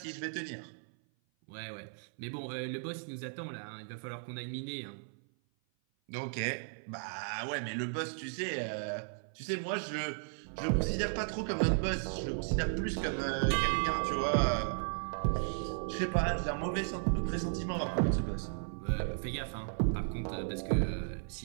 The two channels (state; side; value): silent; left; 54 dB below the other